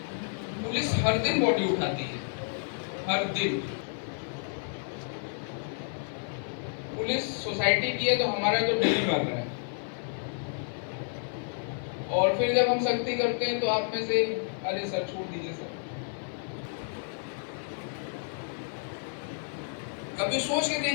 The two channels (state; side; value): silent; right; 56 dB below the other